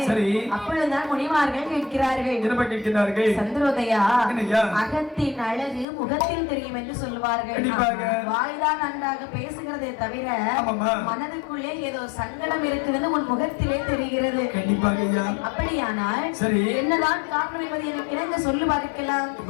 சரி. அப்பொழுதுதான் முனிமார்கள் கேட்கிறார்கள். என்ன கேட்கிறார்கள்? சந்திரோதயா, அகத்தின் அழகு முகத்தில் தெரியும் என்று சொல்வார்கள். வாய்தான் நன்றாக பேசுகிறதே தவிர மனதுக்குள்ளே ஏதோ சங்கடம் இருக்குதுன்னு உன் முகத்திலே தெரிகிறது. கண்டிப்பாக. அப்படியானால் சரி என்னதான் காரணம் என்பதை எனக்கு இணங்க சொல்லி பார்க்கலாம்.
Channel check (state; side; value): drops out; right; at 5.9 s